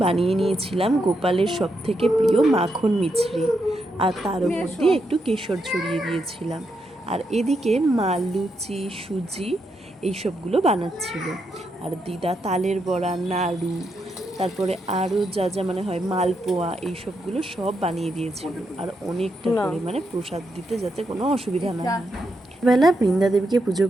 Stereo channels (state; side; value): normal; both; correlation 0.82